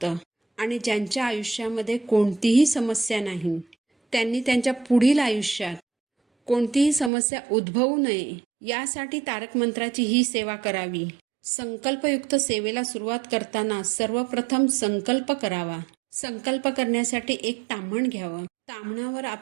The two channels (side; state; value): left; drops out; at 7.1 s